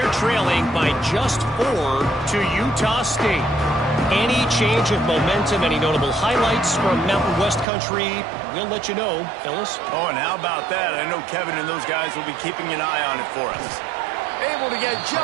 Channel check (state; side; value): drops out; left; at 7.7 s